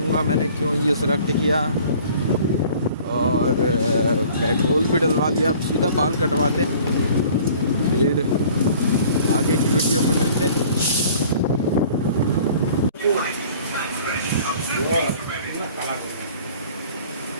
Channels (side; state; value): both; inverted; correlation -0.50